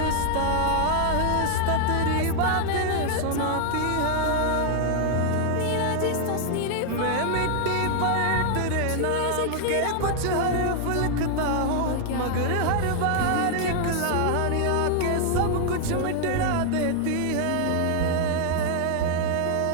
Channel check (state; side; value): different; both; correlation 0.00